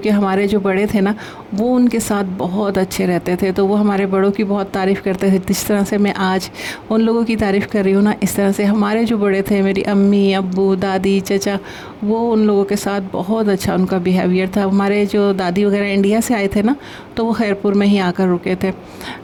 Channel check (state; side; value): identical; both; correlation 1.00